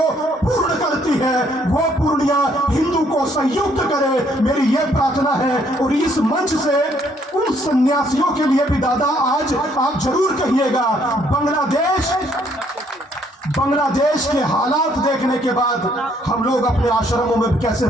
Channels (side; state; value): both; normal; correlation 0.67